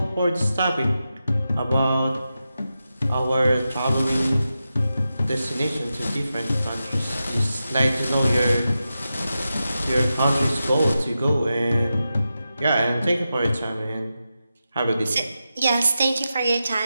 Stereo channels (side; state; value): both; inverted; correlation -0.90